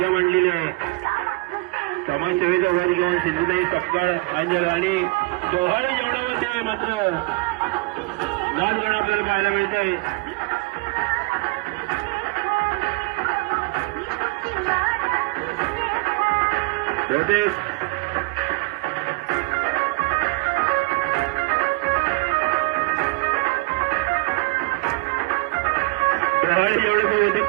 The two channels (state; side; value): quieter; left; 25.8 dB